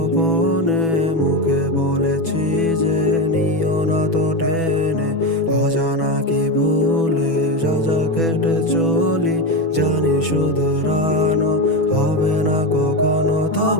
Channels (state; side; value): late; right; 6.1 ms